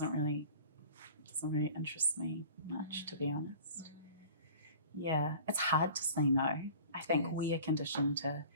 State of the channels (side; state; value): both; inverted; correlation -0.43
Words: really interest me much, to be honest. Yeah, it's hard to say no. I think we are conditioned to